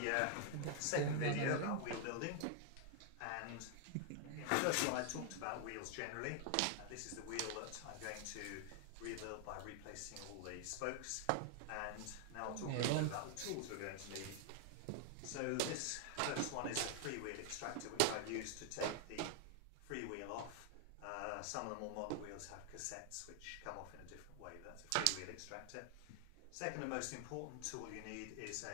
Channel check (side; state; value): both; different; correlation 0.00